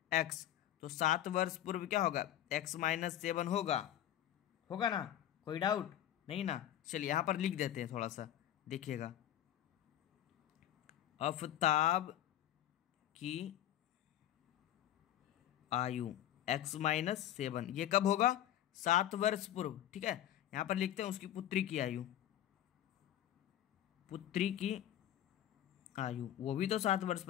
x, तो 7 वर्ष पूर्व क्या होगा x - 7 होगा ना, कोई डाउट नहीं ना। चलिए यहाँ पर लिख देते हैं, थोड़ा सा देखिएगा, आफताब की आयु x - 7 ये कब होगा 7 वर्ष पूर्व। ठीक है, यहाँ पर लिखते हैं उसकी पुत्री की आयु, वो भी तो 7 वर्ष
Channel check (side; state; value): right; quieter; 11.9 dB